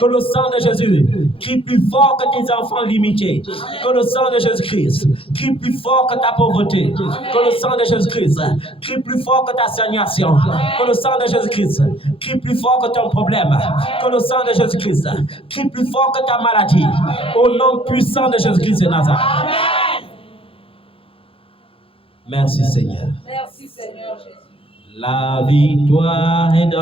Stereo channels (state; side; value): late; right; 0.27 ms